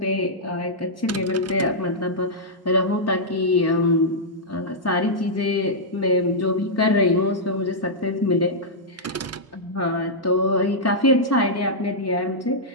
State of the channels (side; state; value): both; normal; correlation -0.09